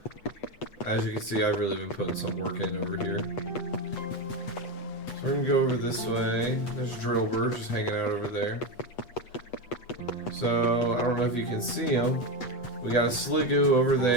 As you can see, I've really been putting some work in over here. So we're gonna go over this way. There's Drillbur just hanging out over there. So I don't know if you can see him. We got a Sliggoo over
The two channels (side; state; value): right; late; 8.2 ms